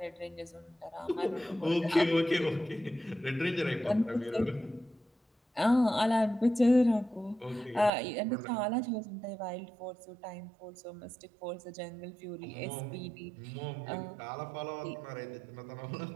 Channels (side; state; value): left; drops out; at 7.9 s